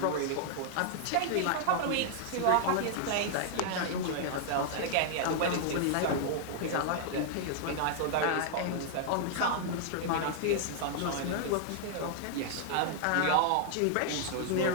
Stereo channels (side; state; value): both; different; correlation -0.01